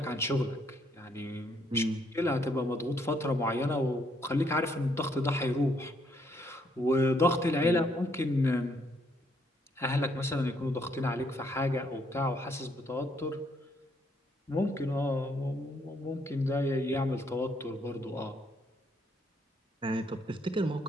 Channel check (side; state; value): both; normal; correlation 0.71